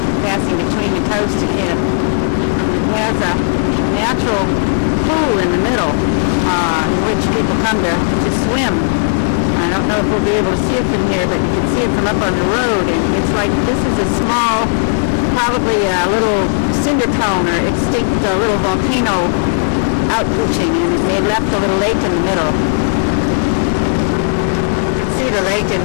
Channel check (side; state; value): right; silent; digital silence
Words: passing between the coast again. It has a natural pool in the middle in which people come to swim. I don't know if we'll be able to see it from here, but you can see it from up on the road, and it's like this is a small, probably a little cinder cone or extinct little volcano outpooching, and they left a little lake in the middle. You can see the lake in